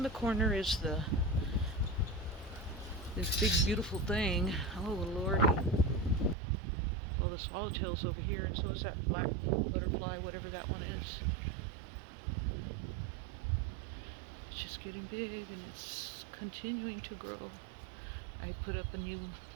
the corner is this big beautiful thing. Oh, Lordy. Well, the swallowtail's over here, and so is that black butterfly, whatever that one is. It's just getting big, and it's continuing to grow. I put up a new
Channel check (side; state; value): left; drops out; at 6.4 s